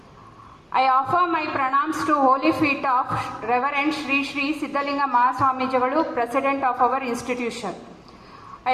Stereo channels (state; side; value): identical; both; correlation 1.00